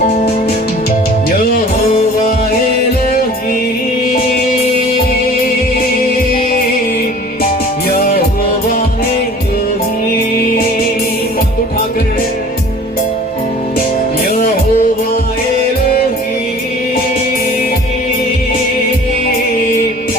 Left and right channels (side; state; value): both; normal; correlation 0.46